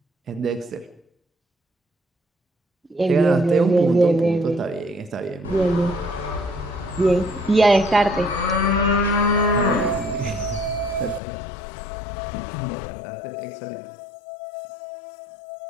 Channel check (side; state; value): right; drops out; at 11.2 s